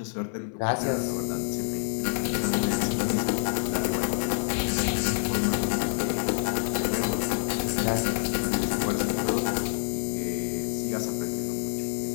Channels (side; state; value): right; silent; 60 dB below the other